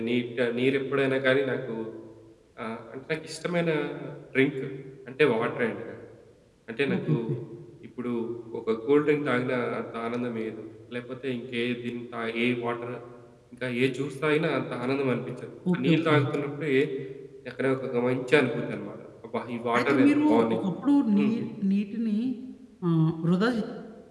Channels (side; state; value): both; identical; correlation 1.00